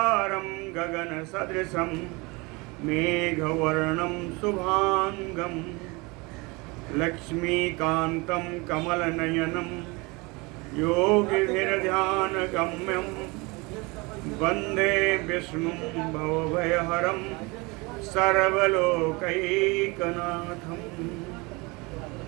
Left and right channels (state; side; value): quieter; left; 26.1 dB